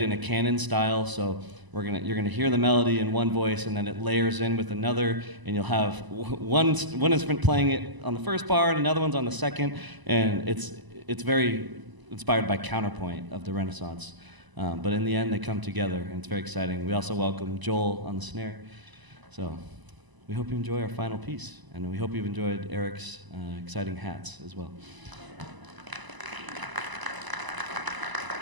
in a canon style, so you're gonna hear the melody in one voice, and then it layers in with another, and you'll have one instrument playing it on the first bar, and another one's on the second, and it's very inspired by counterpoint of the Renaissance. But in the end, they come together, and it's very exciting. We also welcome Joel on the snare. So we hope you enjoy our final piece, and we hope you've enjoyed Eric's exciting hats as well.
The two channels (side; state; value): left; late; 1.0 ms